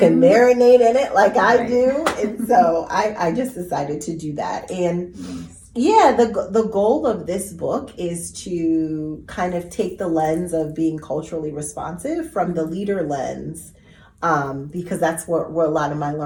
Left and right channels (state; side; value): identical; both; correlation 1.00